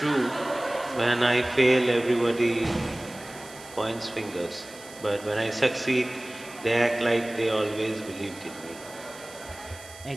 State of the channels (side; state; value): right; noise; hiss, 18 dB below the sound